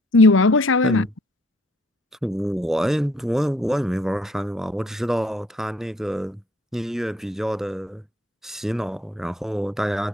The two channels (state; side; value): normal; both; correlation 0.59